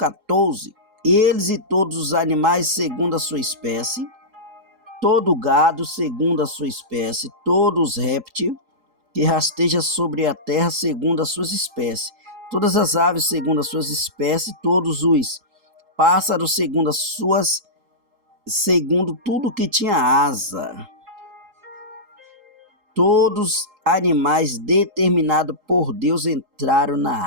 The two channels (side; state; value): left; late; 3.8 ms